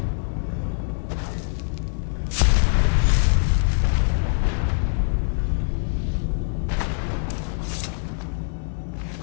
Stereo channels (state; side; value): silent; right; digital silence